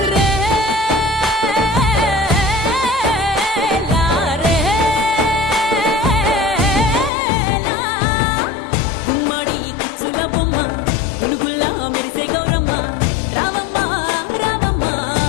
గుమ్మడి కుచ్చుల బొమ్మ గునుగుల్లా మెరిసే గౌరమ్మ రావమ్మ రావమ్మ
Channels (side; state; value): right; drops out; at 7.1 s